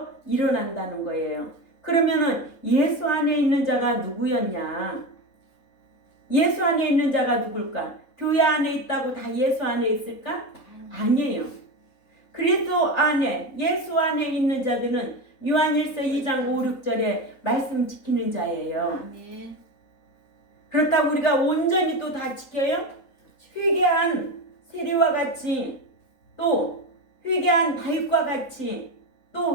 일어난다는 거예요. 그러면은 예수 안에 있는 자가 누구였냐? 예수 안에 있는 자가 누굴까? 교회 안에 있다고 다 예수 안에 있을까? 아니에요. 그리스도 안에 예수 안에 있는 자들은 요한일서 2장 5, 6절에 말씀 지키는 자예요. 아멘. 그렇다고 우리가 온전히 또 다 지켜요? 회개한 세리와 같이, 또 회개한 다윗과 같이,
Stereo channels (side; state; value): right; late; 3.8 ms